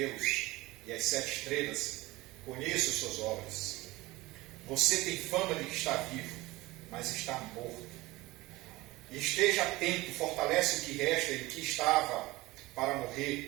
e as 7 estrelas. Conheço suas obras. Você tem fama de que está vivo, mas está morto. E esteja atento, fortalece o que resta e o que estava para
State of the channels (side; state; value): left; quieter; 20.1 dB